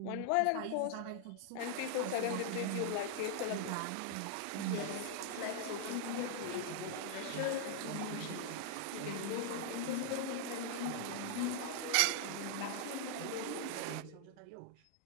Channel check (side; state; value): both; different; correlation 0.00